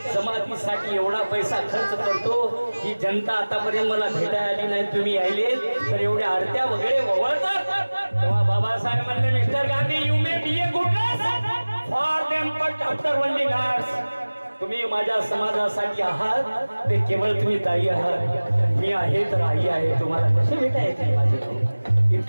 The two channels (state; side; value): inverted; both; correlation -1.00